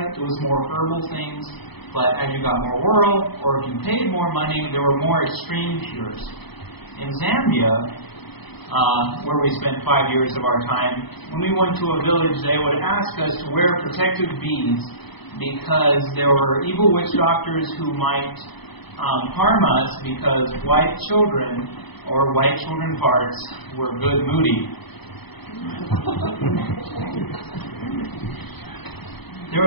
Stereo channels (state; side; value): late; right; 0.99 ms